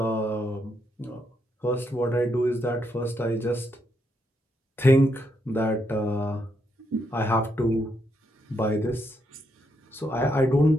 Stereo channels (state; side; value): normal; both; correlation 0.78